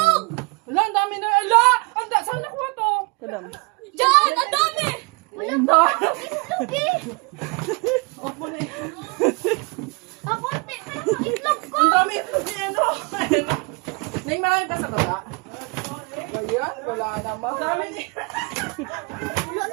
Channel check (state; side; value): quieter; left; 30.0 dB